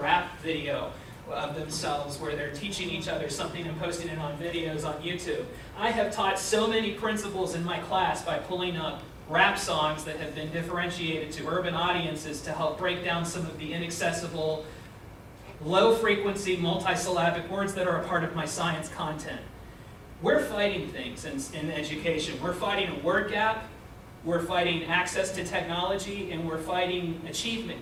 video of themselves where they're teaching each other something and posting it on videos on YouTube. I have taught so many principles in my class by pulling up rap songs that have been differentiated to urban audiences to help break down some of the inaccessible, low-frequency, multisyllabic words that are a part of my science content. We're fighting things in education. We're fighting a word gap, we're fighting access to technology, and we're fighting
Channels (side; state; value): both; identical; correlation 1.00